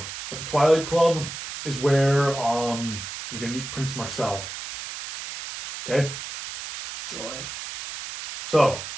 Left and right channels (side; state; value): right; noise; hiss, 9 dB below the sound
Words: At the Twilight Club is where you're gonna meet Prince Marcel. Okay. Joy. So,